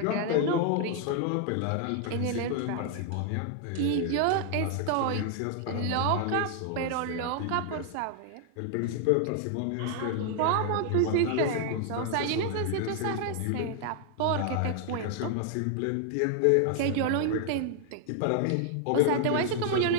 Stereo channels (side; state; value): both; different; correlation 0.00